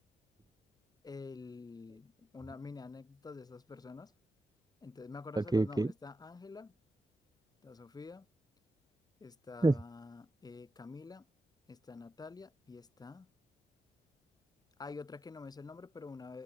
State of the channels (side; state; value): both; normal; correlation 0.91